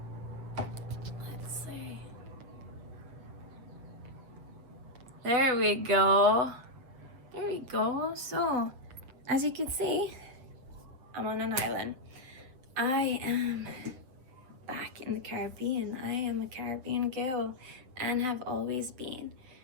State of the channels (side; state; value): left; late; 7.9 ms